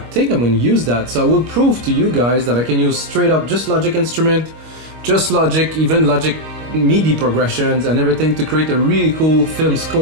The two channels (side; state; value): left; late; 25 ms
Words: think I'm going to use that. So I will prove to you guys that I can use straight up just Logic instrument, just Logic, even Logic MIDI progressions and everything to create a really cool film